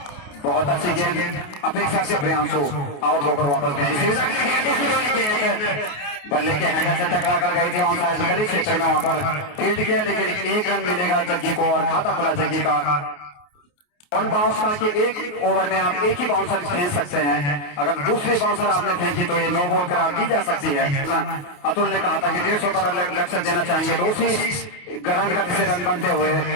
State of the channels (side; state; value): right; late; 28 ms